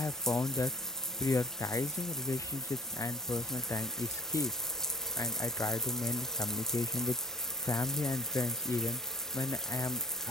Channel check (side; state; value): both; normal; correlation 0.50